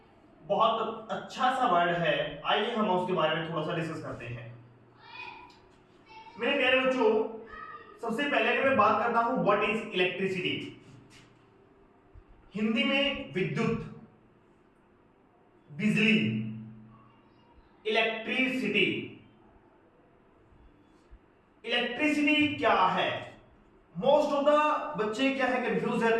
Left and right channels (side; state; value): both; identical; correlation 1.00